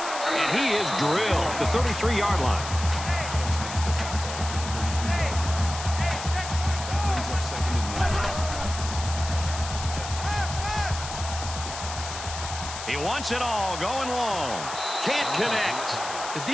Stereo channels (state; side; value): noise; left; hiss, 9 dB below the sound